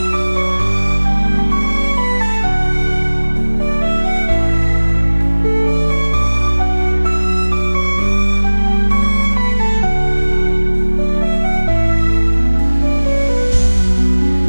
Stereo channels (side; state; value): both; inverted; correlation -1.00